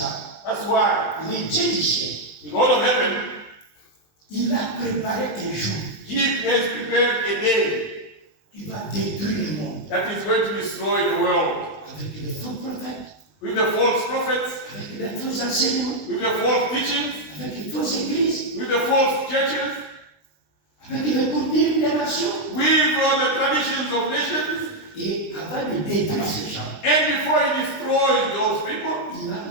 That's why Le Dieu du ciel, the God of heaven, il a préparé un jour He has prepared a day qui va détruire le monde that is going to destroy the world avec les faux prophètes, with the false prophets, avec les faux enseignements, with the false teachings, avec les fausses églises, with the false churches, avec les coutumes des nations. with the traditions of nations. Et avant de détruire ces gens, And before He destroys those people, il a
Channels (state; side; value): late; right; 20 ms